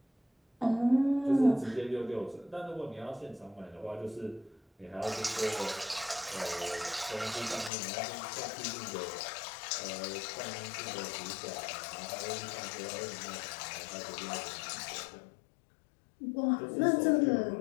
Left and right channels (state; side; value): drops out; right; at 7.7 s